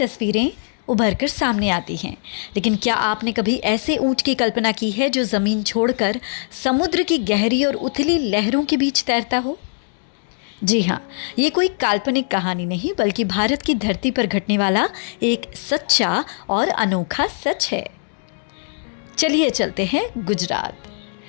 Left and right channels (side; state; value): right; silent; 65 dB below the other